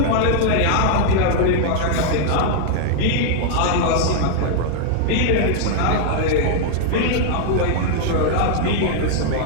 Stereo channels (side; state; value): both; different; correlation 0.00